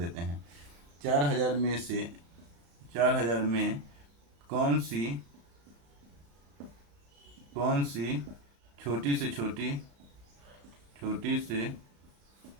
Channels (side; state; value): left; late; 35 ms